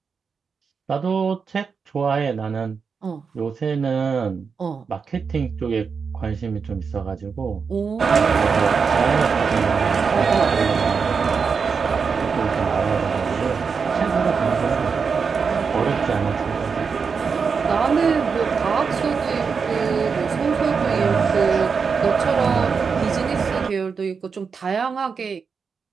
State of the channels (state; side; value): quieter; left; 5.6 dB